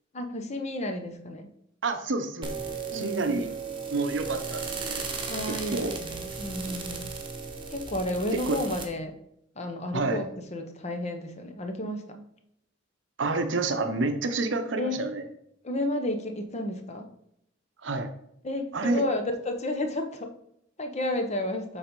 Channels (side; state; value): both; normal; correlation 0.22